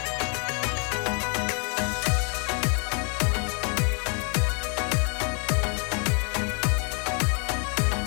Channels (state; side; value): quieter; right; 37.1 dB